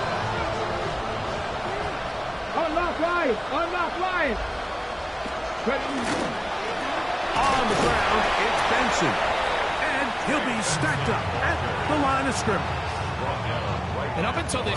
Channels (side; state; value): both; identical; correlation 1.00